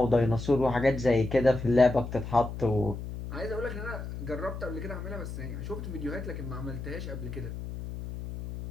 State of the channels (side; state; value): left; noise; hum, 8 dB below the sound